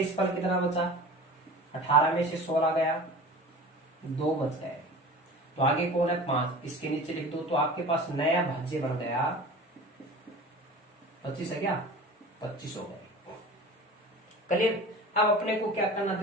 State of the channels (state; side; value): normal; both; correlation 0.38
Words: फल कितना बचा 18 में से 16 गया 2 बच गए, तो आगे कौन है 5, इसके नीचे लिख दो। तो आपके पास नया भाज्य बन गया 25 है क्या 25 हो गए, क्लियर। अब अपने को क्या करना